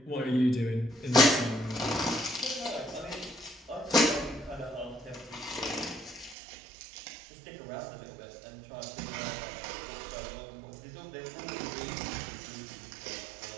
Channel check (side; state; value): left; drops out; at 6.4 s